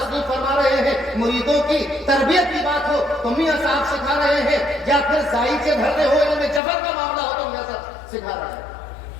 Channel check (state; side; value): drops out; right; at 6.6 s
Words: فرما رہے ہیں، مریدوں کی تربیت کی بات ہو تو میاں صاحب سکھا رہے ہیں، یا پھر ذائقے بھرنے ہو ان میں جبر کا معاملہ ہو تو میاں صاحب سکھا رہے ہیں۔